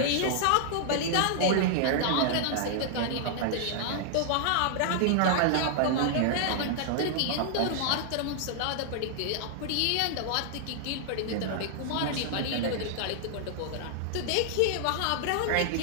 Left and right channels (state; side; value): different; both; correlation -0.01